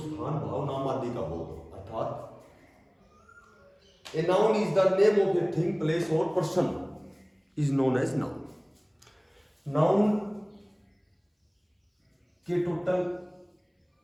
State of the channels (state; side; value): identical; both; correlation 1.00